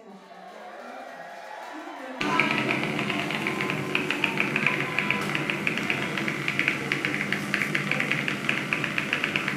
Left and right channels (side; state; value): both; identical; correlation 1.00